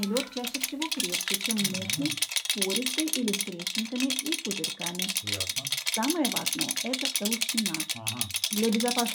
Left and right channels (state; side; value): identical; both; correlation 1.00